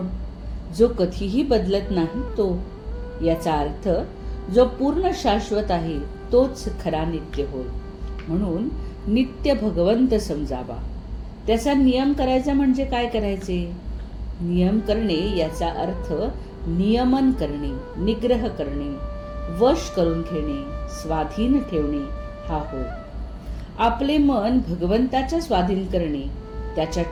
जो कधीही बदलत नाही तो. याचा अर्थ जो पूर्ण शाश्वत आहे तोच खरा नित्य होय. म्हणून नित्य भगवंत समजावा. त्याचा नियम करायचा म्हणजे काय करायचे? नियम करणे याचा अर्थ नियमन करणे, निग्रह करणे, वश करून घेणे, स्वाधीन ठेवणे हा होय. आपले मन भगवंताच्या स्वाधीन करणे, त्याच्या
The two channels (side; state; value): both; identical; correlation 1.00